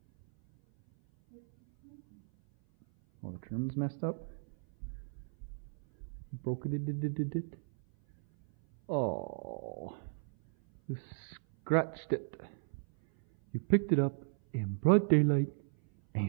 Oh, the trim's messed up. You broke it. Oh, you scratched it. You picked it up in broad daylight and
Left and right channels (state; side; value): silent; left; 54 dB below the other